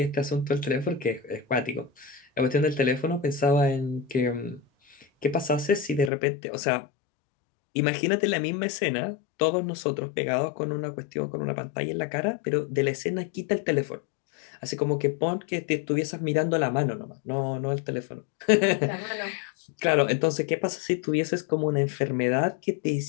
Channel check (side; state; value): right; drops out; at 6.1 s